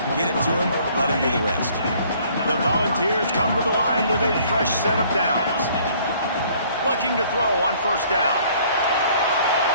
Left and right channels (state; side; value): inverted; both; correlation -0.58